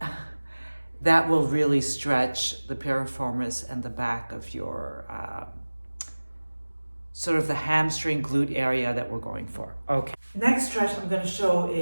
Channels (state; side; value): inverted; both; correlation -1.00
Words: that will really stretch the piriformis and the back of your, sort of the hamstring glute area that we're going for. Okay. Next stretch I'm going to show